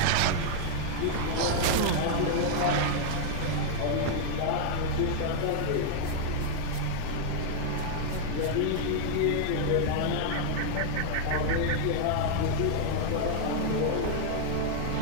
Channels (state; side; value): different; both; correlation 0.00